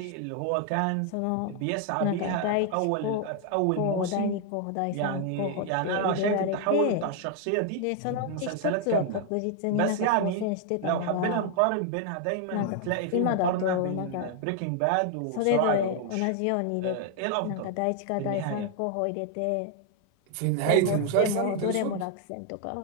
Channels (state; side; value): different; both; correlation 0.00